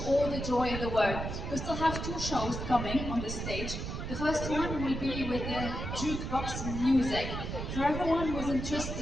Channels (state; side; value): noise; right; rumble, 5 dB below the sound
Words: all the joy in the world. We still have two shows coming on the stage. The first one will be with the jukebox music. For everyone who's